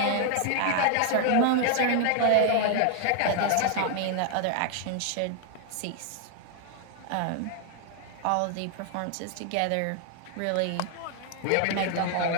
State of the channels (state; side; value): different; both; correlation 0.00